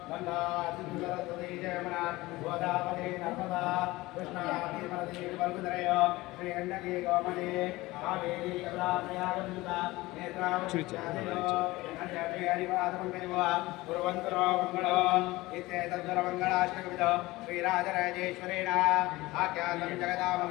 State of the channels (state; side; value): quieter; right; 19.8 dB